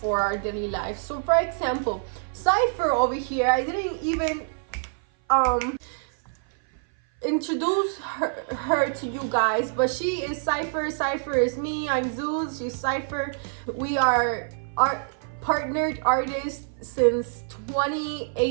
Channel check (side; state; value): left; silent; 57 dB below the other